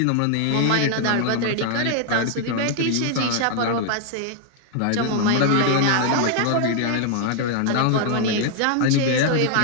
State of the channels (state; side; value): different; both; correlation 0.00